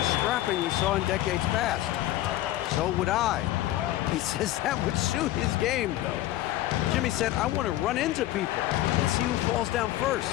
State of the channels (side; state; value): right; quieter; 15.0 dB